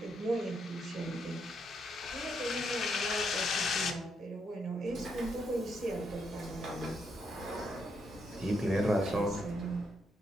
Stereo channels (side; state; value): both; normal; correlation 0.78